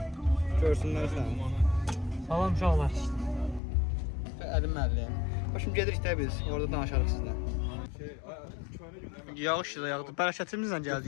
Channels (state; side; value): drops out; right; at 3.6 s